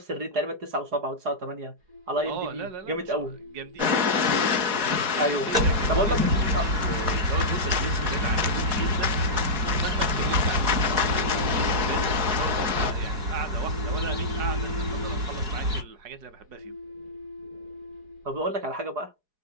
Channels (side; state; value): left; late; 4.8 ms